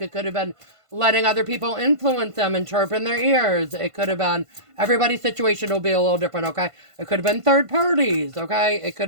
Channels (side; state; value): left; late; 1.5 ms